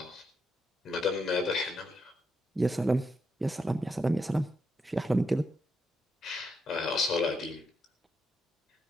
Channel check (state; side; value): normal; both; correlation 0.81